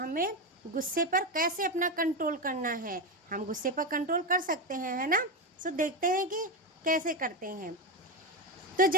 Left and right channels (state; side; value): normal; both; correlation 0.13